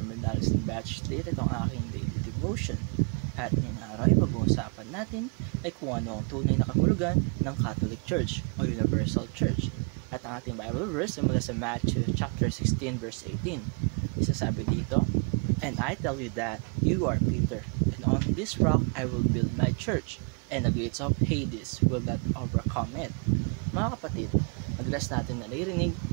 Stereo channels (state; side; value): quieter; left; 38.8 dB